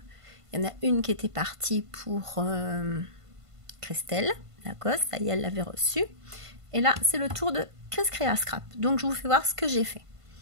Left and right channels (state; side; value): late; left; 1.5 ms